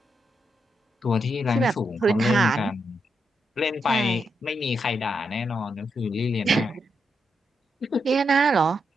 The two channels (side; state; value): both; normal; correlation 0.82